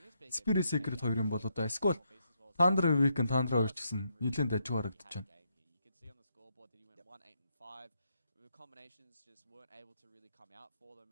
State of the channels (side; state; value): both; inverted; correlation -0.78